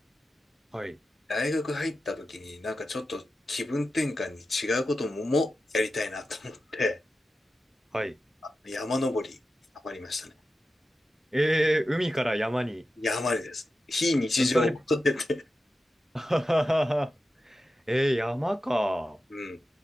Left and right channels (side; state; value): both; normal; correlation 0.92